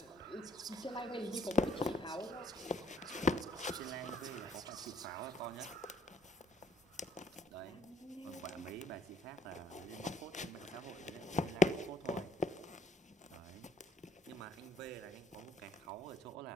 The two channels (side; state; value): both; normal; correlation 0.63